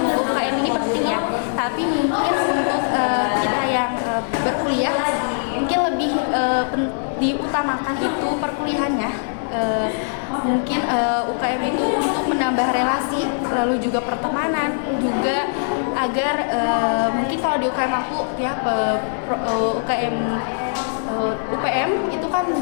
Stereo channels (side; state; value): right; silent; 60 dB below the other